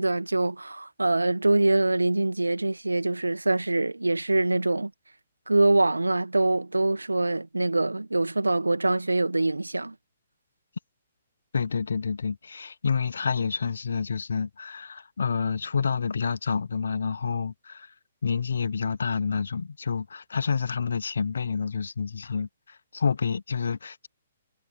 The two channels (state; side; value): inverted; both; correlation -0.92